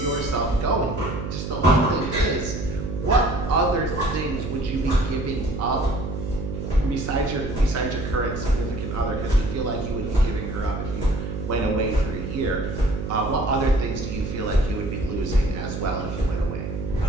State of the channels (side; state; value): right; noise; hum, 5 dB below the sound